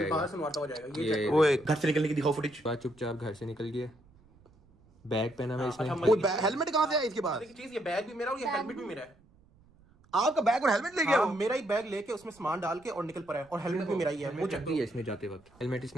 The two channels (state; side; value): noise; right; rumble, 29 dB below the sound